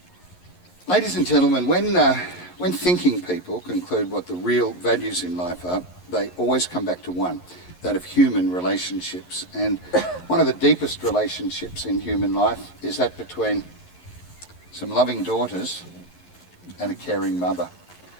Ladies and gentlemen, when thinking people conclude what the real values in life are, they always come back to one, that of human relationships. And one of the deepest relationships in human life is that between some loving daughters and a caring mother.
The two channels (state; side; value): late; right; 11 ms